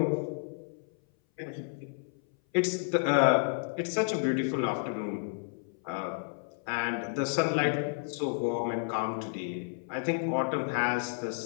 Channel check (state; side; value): silent; right; 57 dB below the other